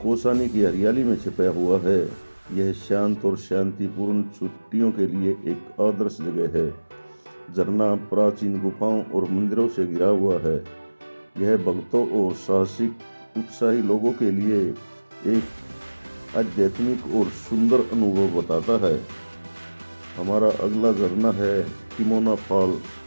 कौसानी की हरियाली में छिपा हुआ है। यह शांत और शांतिपूर्ण छुट्टियों के लिए एक आदर्श जगह है। झरना प्राचीन गुफाओं और मंदिरों से घिरा हुआ है। यह भक्तों और साहसिक उत्साही लोगों के लिए एक आध्यात्मिक और सुंदर अनुभव बताता है। हमारा अगला झरना है तिमोना फॉल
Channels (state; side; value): inverted; both; correlation -1.00